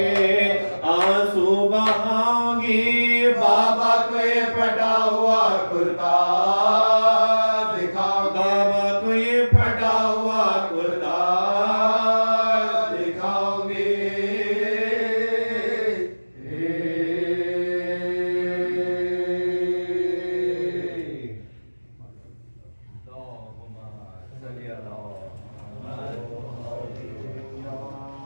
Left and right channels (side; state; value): both; inverted; correlation -1.00